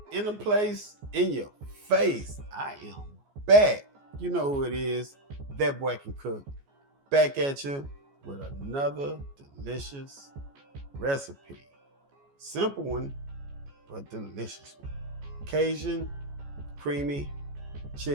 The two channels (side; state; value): left; late; 14 ms